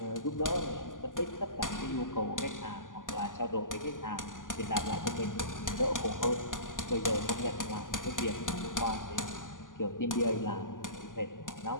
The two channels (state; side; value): late; right; 0.88 ms